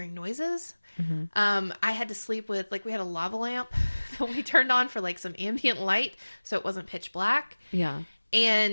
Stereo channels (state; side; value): inverted; both; correlation -1.00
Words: noises. I had to sleep with, like, we had a lava lamp that we turned on for like some ambient light so it wasn't pitch black. Yeah.